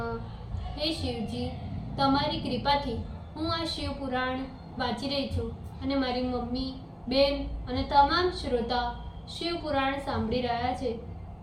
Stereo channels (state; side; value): identical; both; correlation 1.00